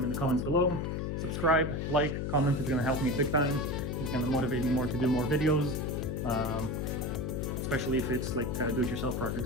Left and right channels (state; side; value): noise; left; hum, 2 dB below the sound